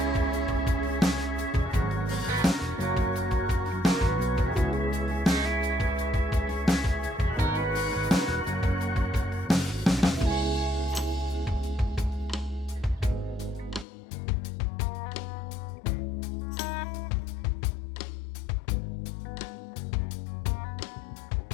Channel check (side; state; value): right; drops out; at 13.9 s